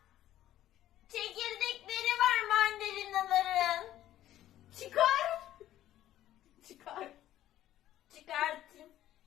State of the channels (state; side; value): quieter; right; 13.0 dB